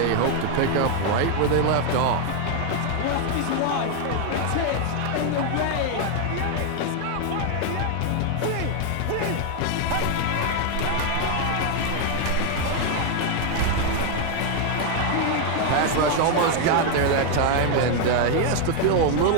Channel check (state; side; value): different; both; correlation 0.00